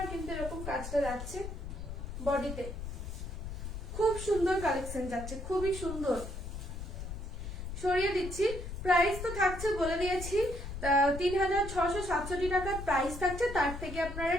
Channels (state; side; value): noise; left; rumble, 7 dB below the sound